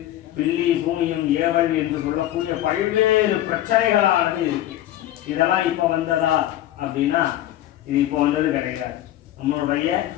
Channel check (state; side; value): quieter; right; 13.6 dB